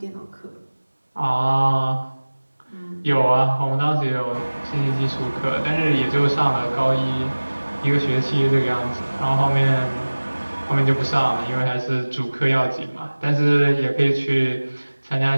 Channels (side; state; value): both; inverted; correlation -1.00